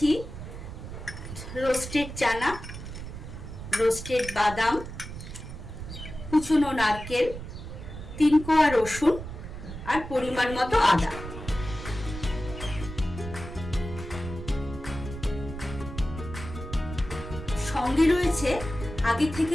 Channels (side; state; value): right; noise; rumble, 10 dB below the sound